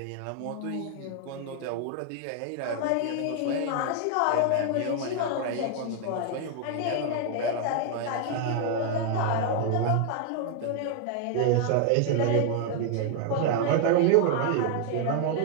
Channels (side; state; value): both; different; correlation 0.00